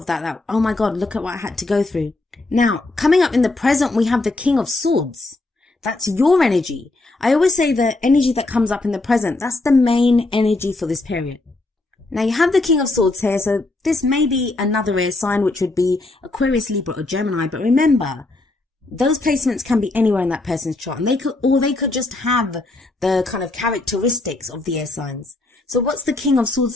that, oh my God, look at what I had to go through. Now, coming up in the present, we have the King of Swords. That's your energy. I always say the energy that comes up in the present, that's the main energy for this period. Now you have the King of Swords here, so this may be another air sign, which would be Aquarius, Libra, or Gemini, but remember, those placements can be anywhere in that person's chart, and they could just have the kind of characteristics of the air signs. So what's the King of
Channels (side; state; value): right; quieter; 3.0 dB